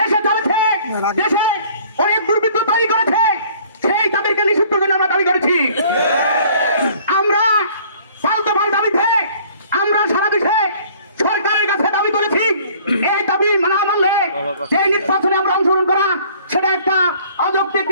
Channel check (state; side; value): inverted; both; correlation -0.54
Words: চলেছে, দেশে অনেক দুর্বৃত্ত তৈরি করেছে, সেই তাদেরকে নিষিদ্ধের জন্য আমরা দাবি করেছি। আমরা পাল্টা দাবিতে আমরা সারা দেশে সরকারের কাছে দাবি করেছি, এই দাবি না মানলে সেই নির্বাচনে আমরা অংশগ্রহণ করা সেটা একটা অযৌক্তিক